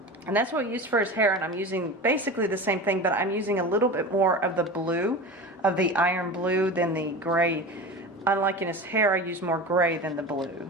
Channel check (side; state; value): both; normal; correlation 0.30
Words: And that's what we used for his hair, and I'm using basically the same thing, but I'm using a little bit more of the blue, of the iron blue, than the gray. Unlike in his hair, I use more gray than the blue.